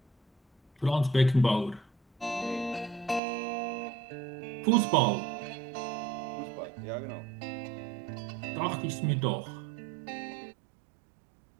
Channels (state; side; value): drops out; left; at 3.2 s